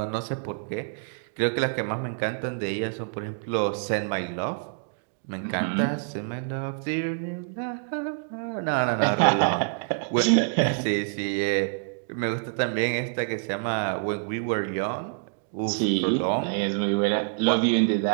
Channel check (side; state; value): left; silent; digital silence